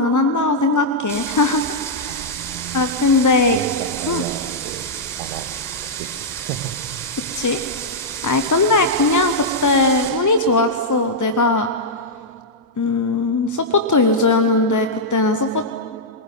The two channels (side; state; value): both; normal; correlation -0.07